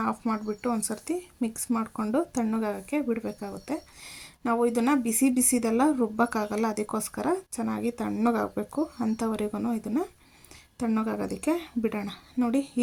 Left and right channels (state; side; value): identical; both; correlation 1.00